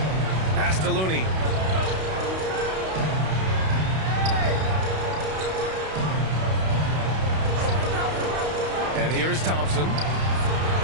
Pass to Looney. And here's Thompson.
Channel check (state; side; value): late; left; 32 ms